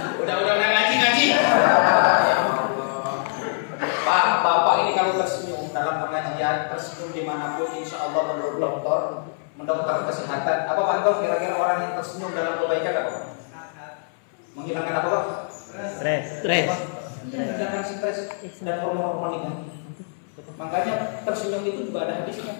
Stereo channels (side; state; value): right; silent; 63 dB below the other